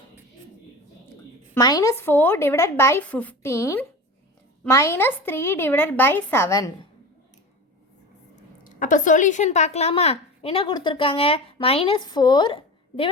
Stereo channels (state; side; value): normal; both; correlation 0.31